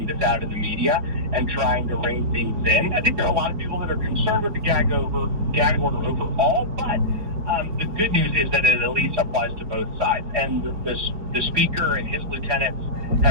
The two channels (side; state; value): left; late; 4.8 ms